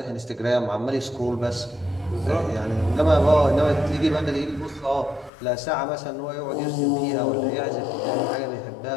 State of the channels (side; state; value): right; drops out; at 5.3 s